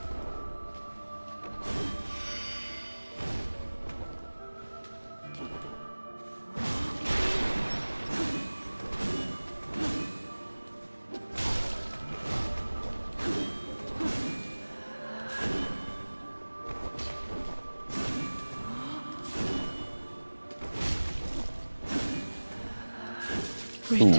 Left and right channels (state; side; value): inverted; both; correlation -1.00